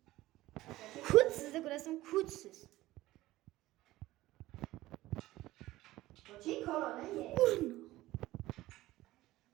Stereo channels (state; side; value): quieter; left; 16.9 dB